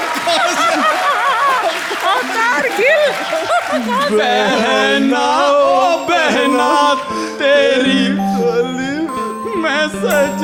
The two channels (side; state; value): both; identical; correlation 1.00